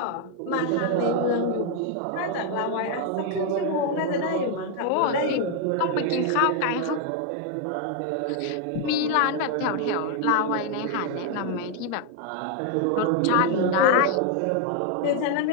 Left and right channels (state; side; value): different; both; correlation 0.00